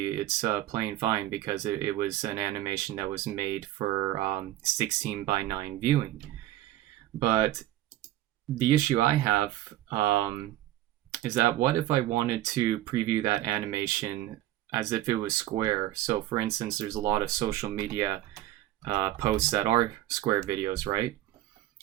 it's playing fine because it was an animation that was made for 16:9 viewing. But the issue I have is that what if I wanted to preview that animation as if it was square? So for instance, there's a lot of social media posts that are square videos, right?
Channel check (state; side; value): quieter; left; 14.5 dB